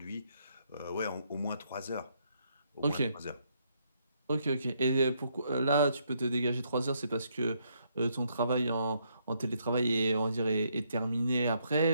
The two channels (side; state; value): both; inverted; correlation -0.74